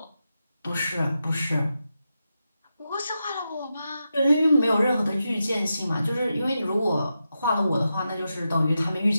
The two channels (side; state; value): both; inverted; correlation -0.88